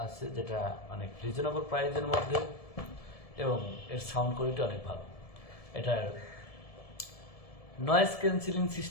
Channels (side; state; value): right; late; 1.7 ms